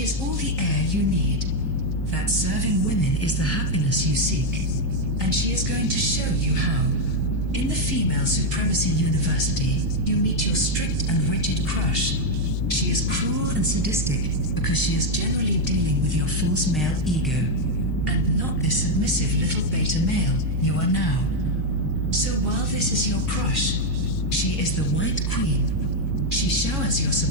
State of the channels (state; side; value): normal; both; correlation 0.02